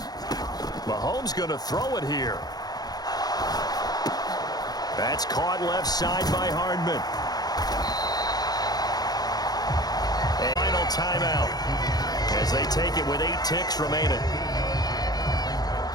Mahomes going to throw it here. That's caught left side by Hardman. And final timeout as they take it with 8 ticks remaining.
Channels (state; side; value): late; right; 0.19 ms